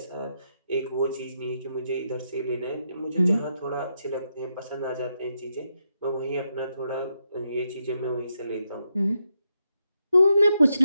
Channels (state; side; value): inverted; both; correlation -0.82